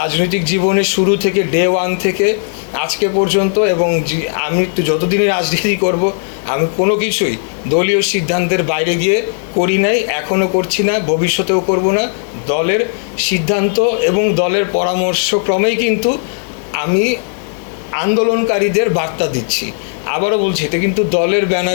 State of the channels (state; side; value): silent; right; digital silence